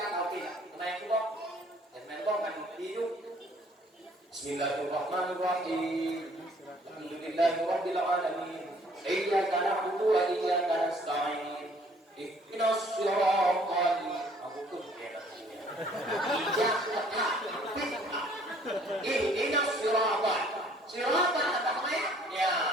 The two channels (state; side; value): normal; both; correlation 0.59